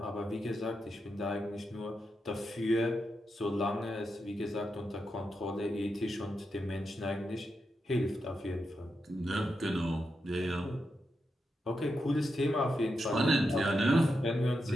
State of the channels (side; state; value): both; normal; correlation 0.86